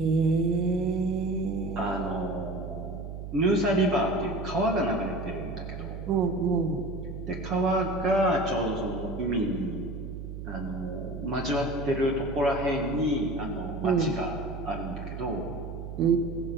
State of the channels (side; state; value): right; noise; hum, 8 dB below the sound